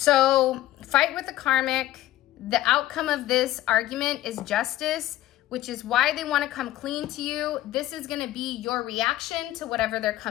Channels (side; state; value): right; quieter; 14.8 dB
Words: fight with the karmic. The outcome of this argument is justice, which is why they want to come clean to you. This is going to be your reaction to whatever they're